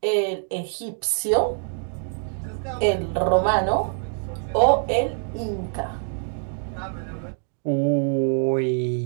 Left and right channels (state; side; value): silent; left; 62 dB below the other